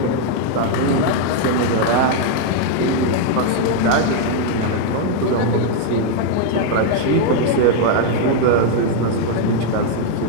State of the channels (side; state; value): both; different; correlation 0.00